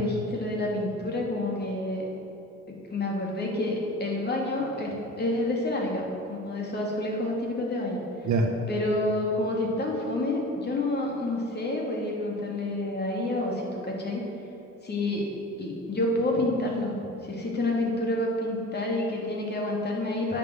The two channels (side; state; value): both; normal; correlation 0.38